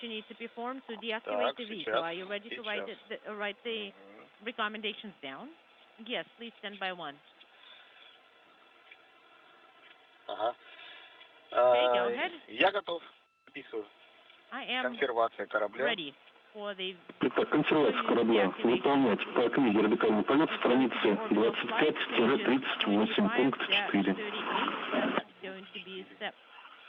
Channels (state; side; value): identical; both; correlation 1.00